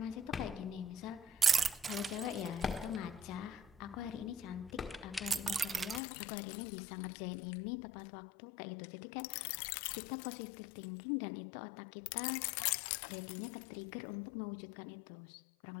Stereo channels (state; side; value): drops out; right; at 6.0 s